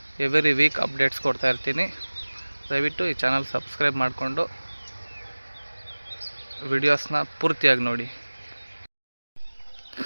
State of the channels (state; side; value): inverted; both; correlation -1.00